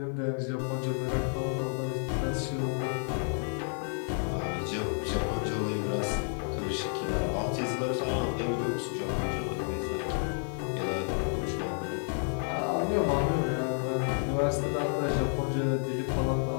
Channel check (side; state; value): right; silent; 57 dB below the other